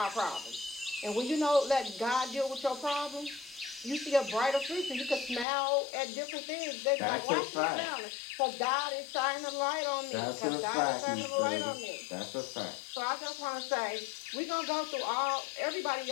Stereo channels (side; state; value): right; drops out; at 5.5 s